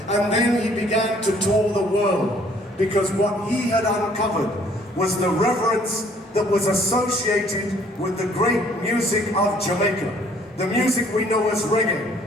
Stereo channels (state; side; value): normal; both; correlation 0.60